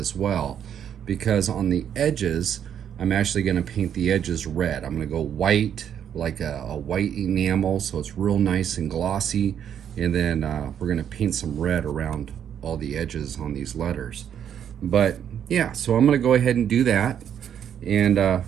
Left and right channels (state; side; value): quieter; left; 9.0 dB